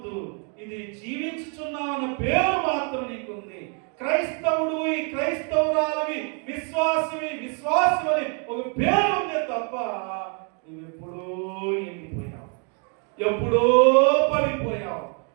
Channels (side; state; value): left; quieter; 39.0 dB